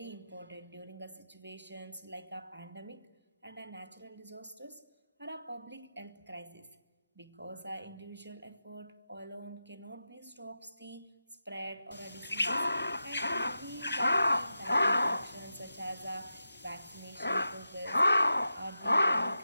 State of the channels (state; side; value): inverted; both; correlation -0.90